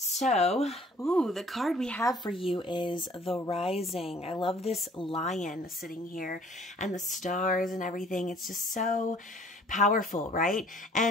So, the card we have for you is the Rising. I love this lion sitting here and the stars and everything. It's just so powerful, right?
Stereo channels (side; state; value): both; normal; correlation 0.55